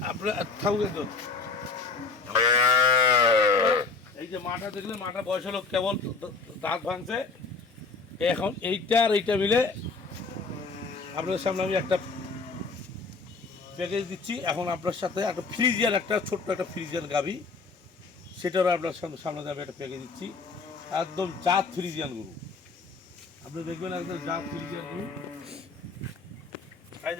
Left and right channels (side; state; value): right; quieter; 4.4 dB